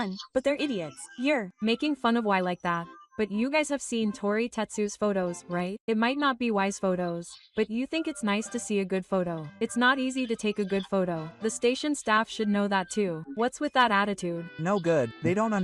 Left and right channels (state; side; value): identical; both; correlation 1.00